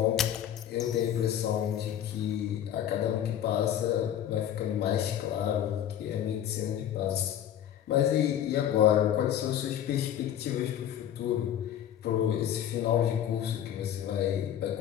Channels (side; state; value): right; quieter; 10.5 dB